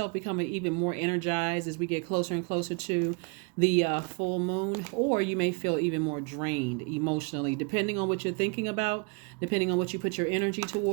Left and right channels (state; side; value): quieter; left; 32.9 dB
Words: becoming even more energized as we get closer and closer to the full moon, or you may feel even more drained emotionally, depending on what you're thinking about, depending on what you put your energy